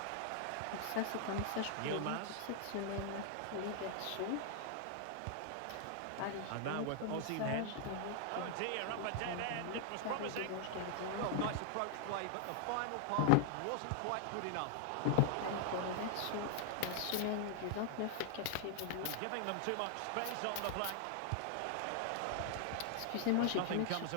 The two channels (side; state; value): both; different; correlation 0.00